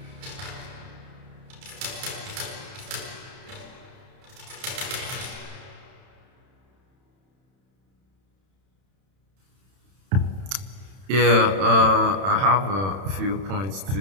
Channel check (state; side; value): late; left; 31 ms